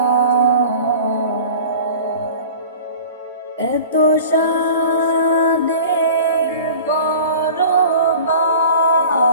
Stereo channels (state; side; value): inverted; both; correlation -0.41